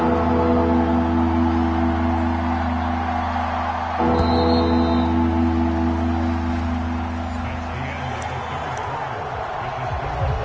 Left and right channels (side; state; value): both; identical; correlation 1.00